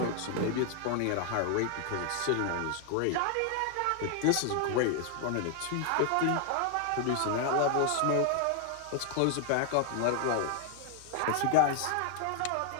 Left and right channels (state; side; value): different; both; correlation 0.00